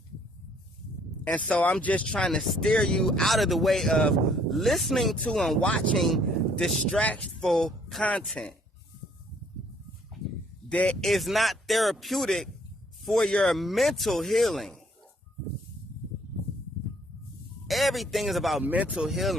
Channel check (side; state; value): both; normal; correlation 0.63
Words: And so I'm just trying to steer you out of the way of listening to and watching distractful content that is not therapeutic for your mental healing. Everything is about mental